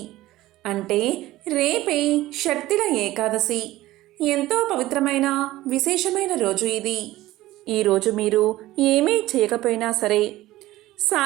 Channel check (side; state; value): left; quieter; 16.6 dB